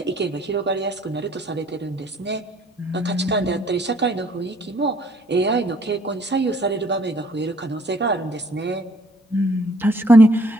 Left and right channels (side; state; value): both; normal; correlation 0.61